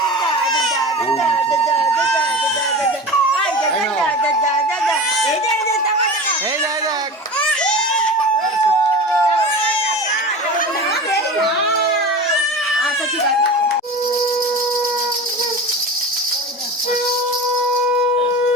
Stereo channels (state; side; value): normal; both; correlation 0.32